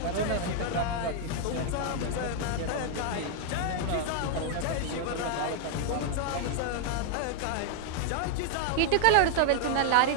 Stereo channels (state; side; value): different; both; correlation 0.00